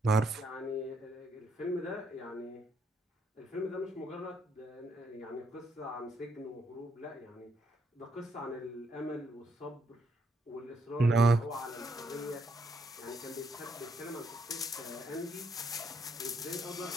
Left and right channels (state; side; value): normal; both; correlation 0.73